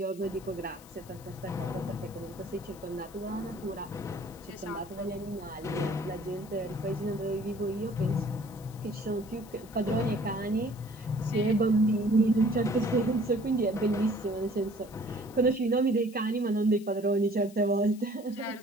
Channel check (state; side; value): noise; left; hiss, 22 dB below the sound